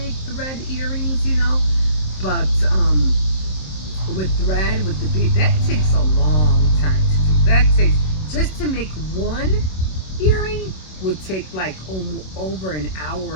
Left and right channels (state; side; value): late; right; 27 ms